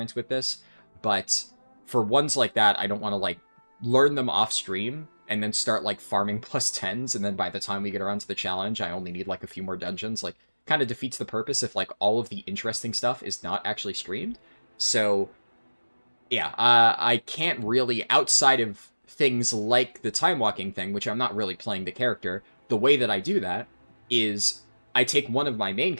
with this. But for ones like that, I don't want to, like, learn them off-stream and then start, like, farming +10s, and then by the time we get around to the challenge, I only need, like, a few more dungeons. Like, kind of defeats the purpose if, like, all of the interesting stuff is not actually streamed. So, yeah, I can't really, outside of things like the time-walking thing, which I'm not really playing the character, the way that I do that is I take one of my main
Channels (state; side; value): inverted; both; correlation -1.00